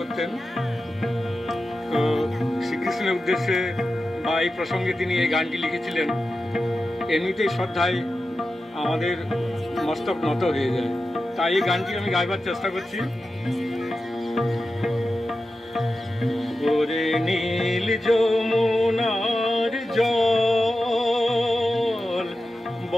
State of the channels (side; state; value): both; normal; correlation 0.92